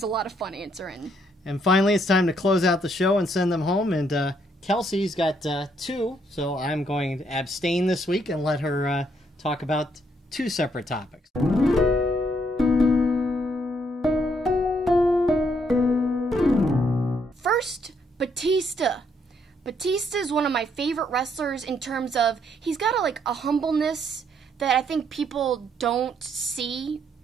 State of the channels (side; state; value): both; normal; correlation 0.71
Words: a lot of fun answering. And finally, it's time to close out the show and send them home. And Kelsi's got 2, so I'm going to abstain this week and let her talk about 2 separate topics. First, Batista. Batista is one of my favorite wrestlers in terms of he's got a humbleness that I think people don't see